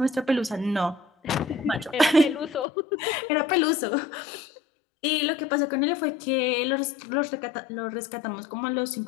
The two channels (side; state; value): right; drops out; at 2.7 s